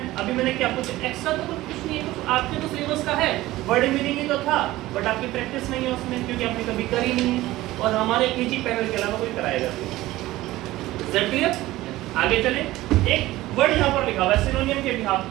अभी मैंने क्या कुछ एक्स्ट्रा तो कुछ नहीं है, कुछ आपके तो सिलेबस का है, वर्ड मीनिंग ही तो था, बट आपकी प्रैक्टिस नहीं है उसमें क्योंकि आपने कभी करी नहीं है, और हमारे केजी पैनल के अलावा कोई कराएगा नहीं। Is that clear? आगे चले। एक वर्ड यहाँ पर लिखा हुआ है सिनोनियम के बिहाफ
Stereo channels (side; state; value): left; quieter; 17.1 dB